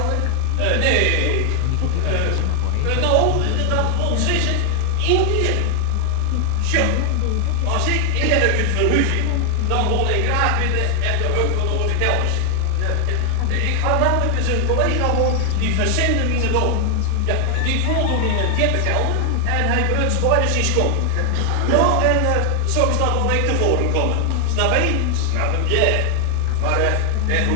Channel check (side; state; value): both; different; correlation 0.00